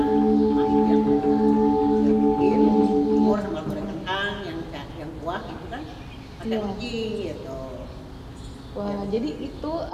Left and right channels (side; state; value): both; identical; correlation 1.00